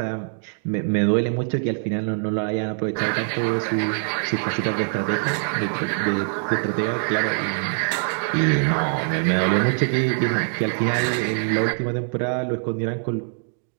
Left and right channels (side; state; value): left; silent; 63 dB below the other